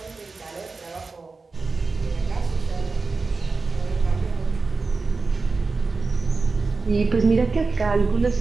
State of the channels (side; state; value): left; quieter; 4.0 dB